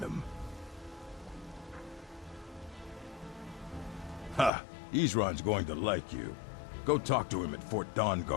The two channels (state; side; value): drops out; right; at 4.5 s